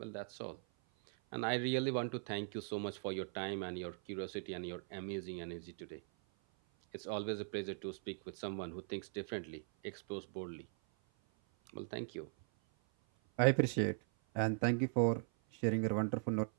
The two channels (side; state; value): left; silent; 51 dB below the other